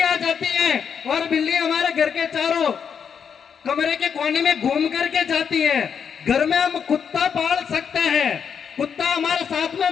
जाती है और बिल्ली हमारे घर के चारों कमरे के कोने में घूम करके जाती है। घर में हम कुत्ता पाल सकते हैं, कुत्ता हमारे साथ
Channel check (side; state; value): right; quieter; 7.1 dB